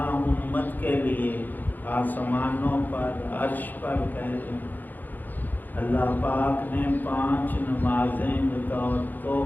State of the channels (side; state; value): right; late; 0.086 ms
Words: امت کے لیے آسمانوں پر، عرش پر کہہ لیں، اللہ پاک نے 5 نمازیں بطور